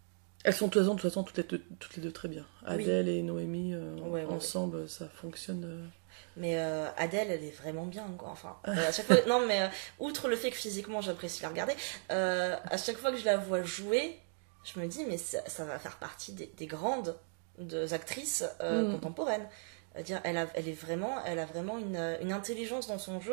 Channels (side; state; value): left; silent; 54 dB below the other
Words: Elles sont de toute façon toutes les deux très bien. Adèle et Noémie, ensemble, ça fonctionne... Mais Adèle, elle est vraiment bien, quoi. Enfin, à chaque fois... Non, mais outre le fait que physiquement, j'apprécie la regarder, à chaque fois que je la vois jouer, je me dis, mais ça va faire partie des grandes actrices contemporaines. Dire, elle a vraiment une intelligence dans son